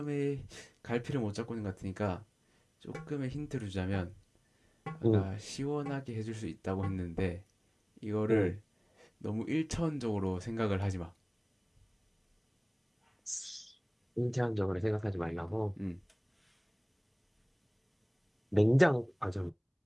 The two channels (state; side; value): identical; both; correlation 1.00